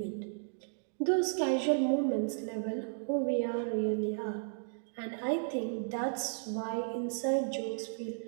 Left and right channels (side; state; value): left; silent; digital silence